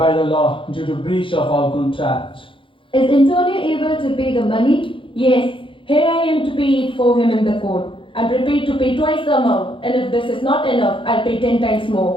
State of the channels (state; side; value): late; right; 0.25 ms